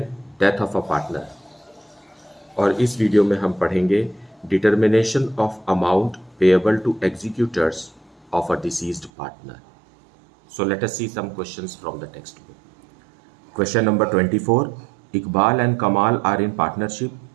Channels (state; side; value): drops out; left; at 9.1 s